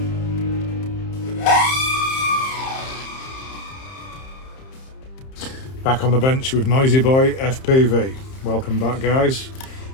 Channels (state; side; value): late; right; 31 ms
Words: Back on the bench with Noisy Boy FPV. Welcome back, guys.